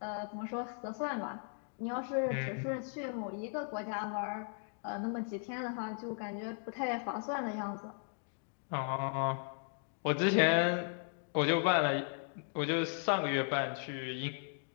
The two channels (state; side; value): silent; right; 53 dB below the other